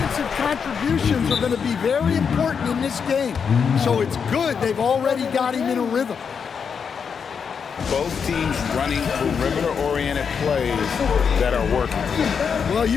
contributions are going to be very important in this game. So it's good they've already got him in a rhythm. Both teams running perimeter-oriented plays that are working. Well,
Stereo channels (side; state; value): right; quieter; 6.5 dB